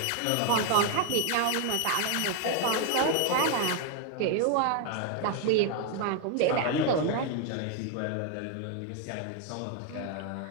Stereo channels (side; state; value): both; different; correlation 0.01